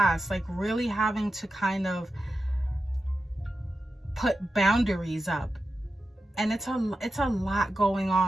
like really having to kind of put boundaries up. And it's a lot going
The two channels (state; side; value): normal; both; correlation 0.91